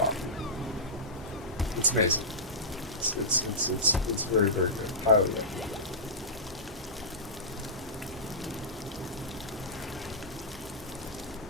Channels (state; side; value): normal; both; correlation -0.16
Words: It's amazing. It's very, very good. Highly recommend.